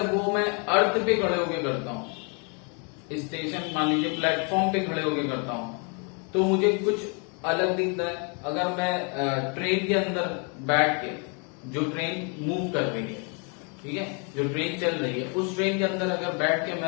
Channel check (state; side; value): quieter; right; 36.5 dB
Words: वो मैं अर्थ पे खड़े होके करता हूँ, स्टेशन मान लीजिए प्लेटफॉर्म पे खड़े होके करता हूँ, तो मुझे कुछ अलग दिखता है। अगर मैं ट्रेन के अंदर बैठ के, जो ट्रेन मूव कर रही है, ठीक है, जो ट्रेन चल रही है, उस ट्रेन के अंदर अगर बैठ के